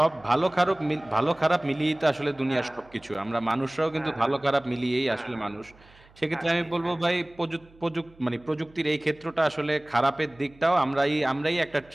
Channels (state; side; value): noise; right; hum, 27 dB below the sound